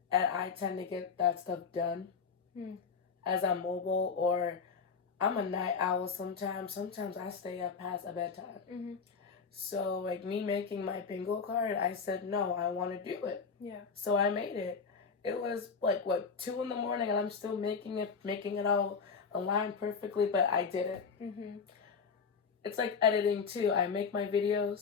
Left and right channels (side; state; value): right; quieter; 5.6 dB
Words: and I tend to get that stuff done as I'm mobile, or I'm a night owl sometimes. Sometimes I stay up past a bedtime. So, like, me making my bingo card, I said, no, I want to do it. Yeah. So I made it. It was, 2 in the morning, and I'm still making it all align perfectly, but I did it. It's like editing, too. I make my